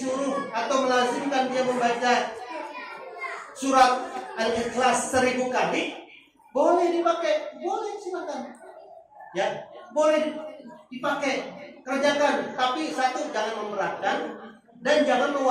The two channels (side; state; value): both; identical; correlation 1.00